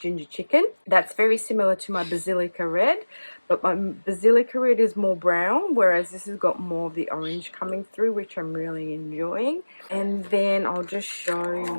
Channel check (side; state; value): both; inverted; correlation -1.00